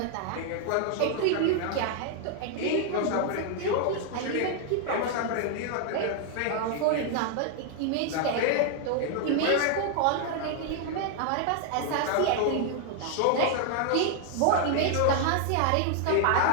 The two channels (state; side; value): different; both; correlation 0.00